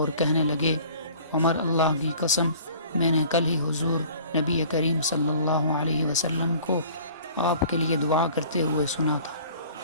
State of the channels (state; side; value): inverted; both; correlation -0.49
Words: کہنے لگے، عمر، اللہ کی قسم، میں نے کل ہی حضور نبی کریم صلی اللہ علیہ وسلم کو آپ کے لیے دعا کرتے ہوئے سنا تھا۔